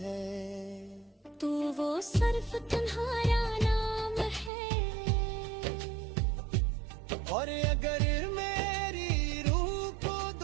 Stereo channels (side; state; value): left; drops out; at 4.5 s